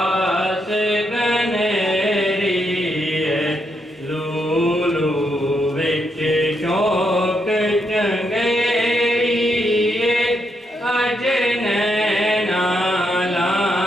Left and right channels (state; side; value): normal; both; correlation 0.79